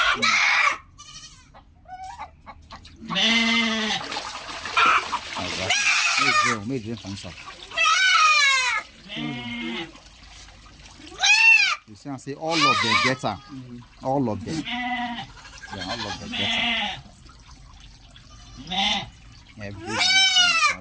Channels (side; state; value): both; identical; correlation 1.00